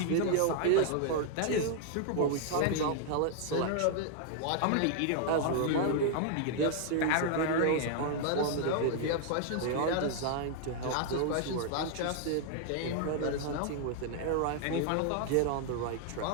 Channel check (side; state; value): both; different; correlation 0.00